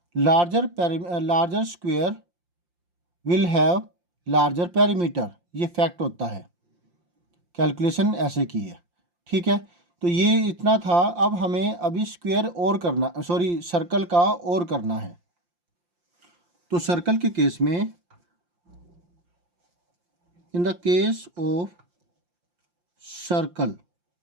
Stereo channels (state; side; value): late; left; 5.7 ms